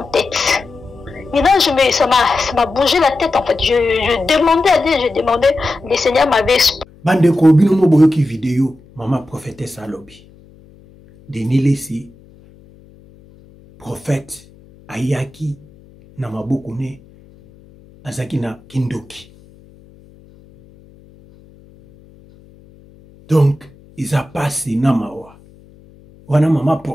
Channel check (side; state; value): left; noise; hum, 26 dB below the sound